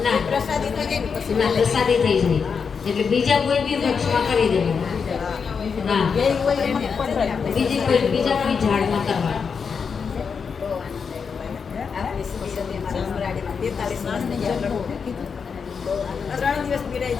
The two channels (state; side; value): quieter; right; 6.0 dB